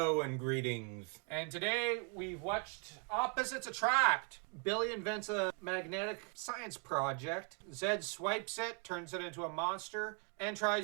and greetings. And today we've watched Opposites Attract. Billy invents a magnetic science project. Zed swipes it, turns it into a monster, and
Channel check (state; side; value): quieter; left; 38.7 dB